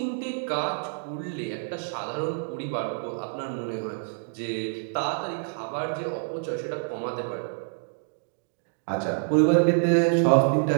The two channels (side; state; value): left; silent; digital silence